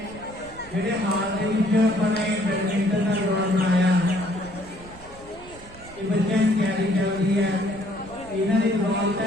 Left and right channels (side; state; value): right; noise; rumble, 21 dB below the sound